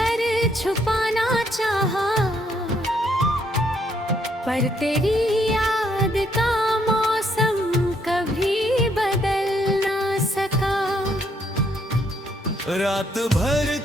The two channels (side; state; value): both; normal; correlation 0.71